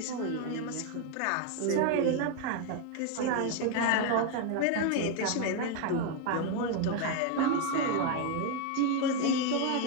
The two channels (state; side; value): different; both; correlation 0.01